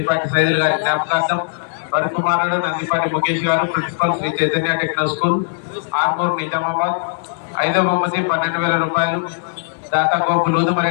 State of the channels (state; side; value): silent; right; 67 dB below the other